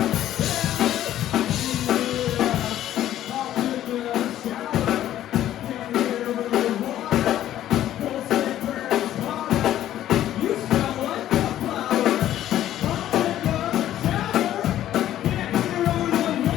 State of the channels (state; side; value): quieter; right; 12.4 dB